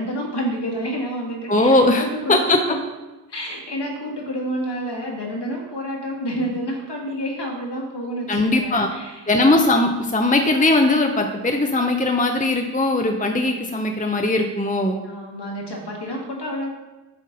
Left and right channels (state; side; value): normal; both; correlation 0.32